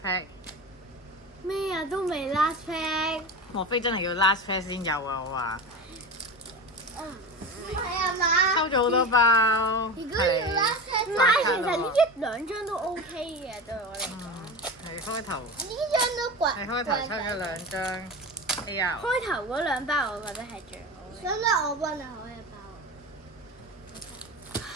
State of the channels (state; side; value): normal; both; correlation 0.27